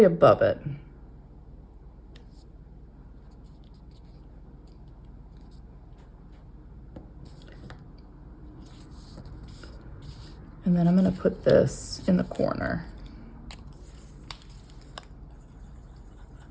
above it. And then I'm going to put this in the corner.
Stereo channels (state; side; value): identical; both; correlation 1.00